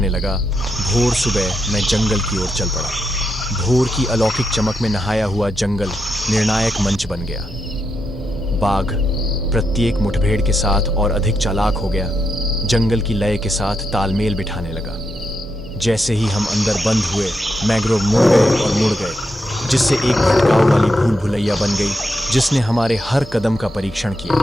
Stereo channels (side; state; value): both; normal; correlation 0.83